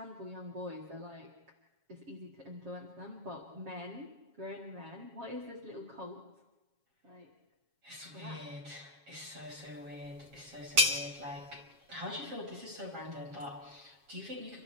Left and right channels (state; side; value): late; left; 7.3 ms